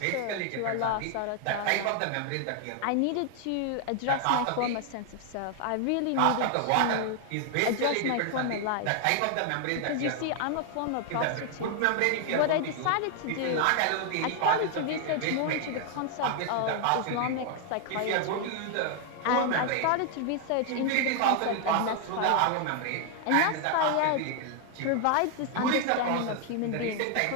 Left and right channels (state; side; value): different; both; correlation 0.00